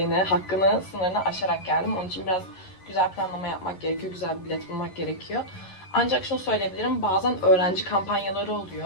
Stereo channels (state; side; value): late; right; 11 ms